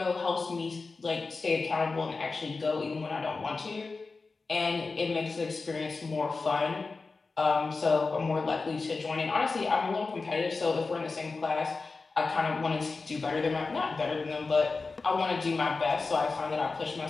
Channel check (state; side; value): quieter; right; 4.0 dB